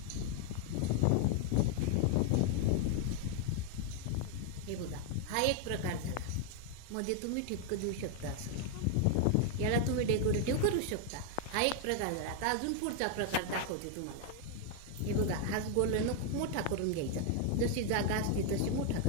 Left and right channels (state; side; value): different; both; correlation 0.00